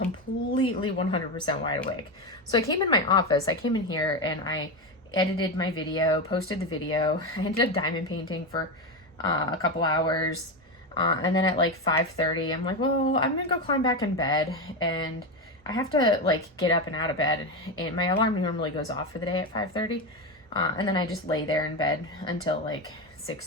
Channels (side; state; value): both; normal; correlation 0.15